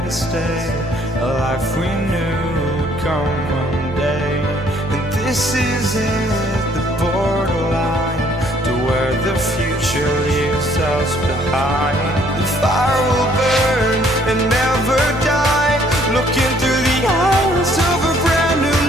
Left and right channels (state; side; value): normal; both; correlation 0.63